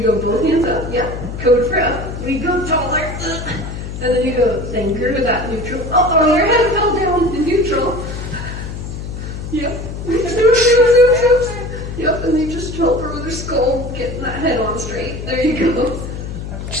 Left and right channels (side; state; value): left; noise; hum, 8 dB below the sound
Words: go both hands up, yeah, code for up. We go taller, and then you go thinker with that neutral. Oh, your head fell down in neutral. Yep. Yep, and you just help her with her skull, getting that head on straight. There you go.